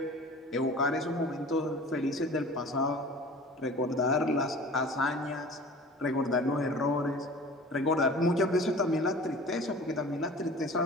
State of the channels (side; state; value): both; normal; correlation 0.42